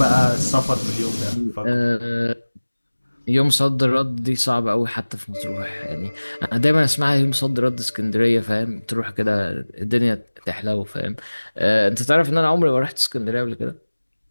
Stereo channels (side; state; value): both; inverted; correlation -1.00